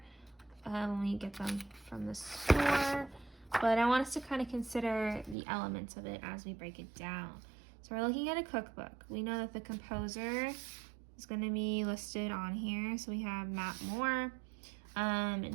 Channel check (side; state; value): left; drops out; at 5.4 s